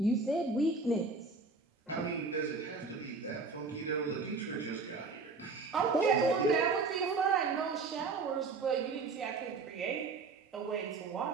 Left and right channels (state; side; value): quieter; left; 4.2 dB